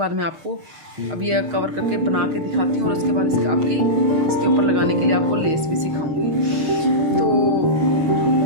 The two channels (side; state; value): left; late; 6.5 ms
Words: मैं आपको अब ये कवर करके बना के दिखाती हूँ और उसके बाद इसके ऊपर लगाने के लिए आपको लेस भी सिखाऊंगी। तो